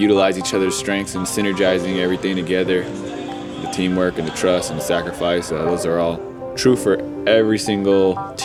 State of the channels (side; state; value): both; identical; correlation 1.00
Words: each other's strengths and synergizing everything together. The teamwork and the trust and the sacrifice, those are all true for every single